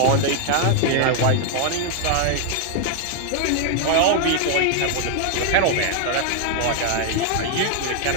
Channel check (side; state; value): both; different; correlation 0.00